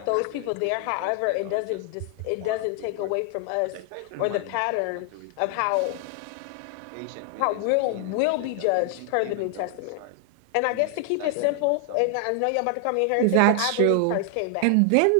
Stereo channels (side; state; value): both; different; correlation 0.00